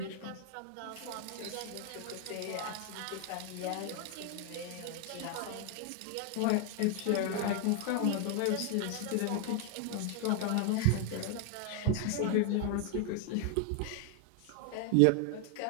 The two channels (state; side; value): different; both; correlation 0.01